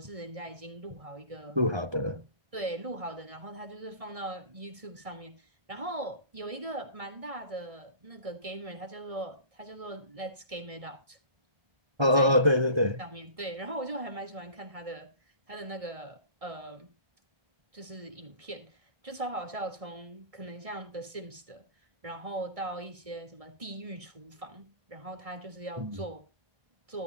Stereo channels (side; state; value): left; late; 1.6 ms